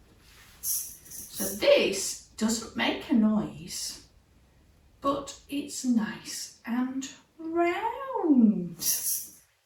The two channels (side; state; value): both; identical; correlation 1.00